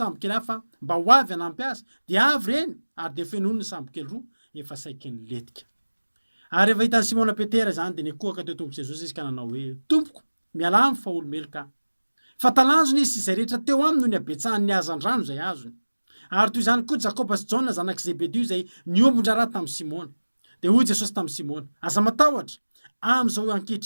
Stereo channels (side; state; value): both; inverted; correlation -1.00